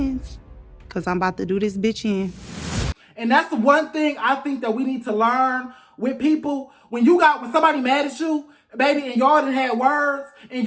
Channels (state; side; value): identical; both; correlation 1.00